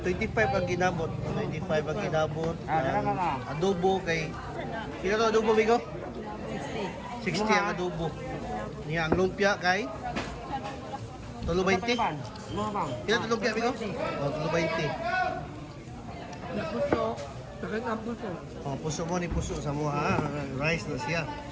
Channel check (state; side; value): identical; both; correlation 1.00